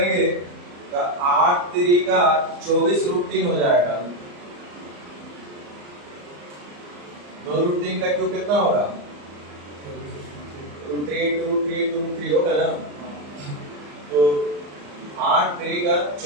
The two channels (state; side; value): late; left; 34 ms